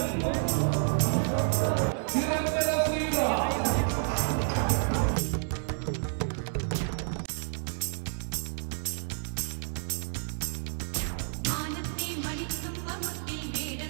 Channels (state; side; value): silent; left; 58 dB below the other